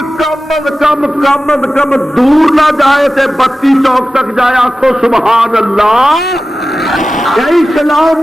کم از کم دور نہ جائے تے بتی چوک تک جائے، آکھو سبحان اللہ۔ اسلام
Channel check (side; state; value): both; normal; correlation 0.95